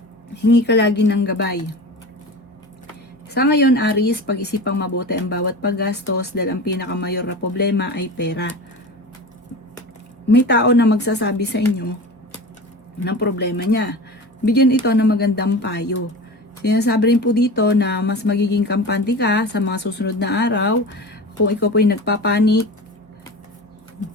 Hingi ka lagi ng gabay. Sa ngayon, Aries, pag-isipang mabuti ang bawat paggastos dahil ang pinakamayor na problema ay pera. May tao na magsasabi sa inyo ng problema niya. Bigyan ito ng magandang payo. Sinasabi rin po dito na mas magiging kampante ka sa mga susunod na araw. Kung ikaw po ay nagpapanik,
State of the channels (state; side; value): normal; both; correlation 0.32